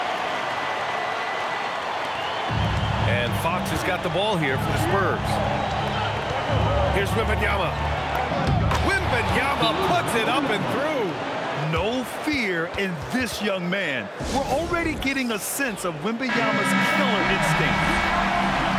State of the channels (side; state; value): both; identical; correlation 1.00